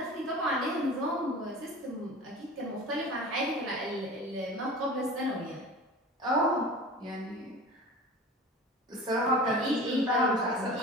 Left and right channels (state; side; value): normal; both; correlation 0.37